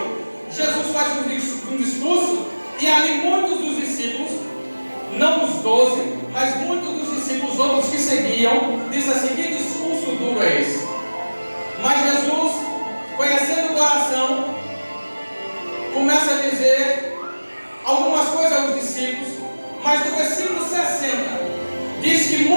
Jesus faz um discurso, e ali muitos dos discípulos, não os 12, mas muitos dos discípulos, outros que seguiam, diz assim: que discurso duro é esse? Mas Jesus, conhecendo o coração, começa a dizer algumas coisas aos discípulos, mas no versículo 60 diz que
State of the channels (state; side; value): inverted; both; correlation -1.00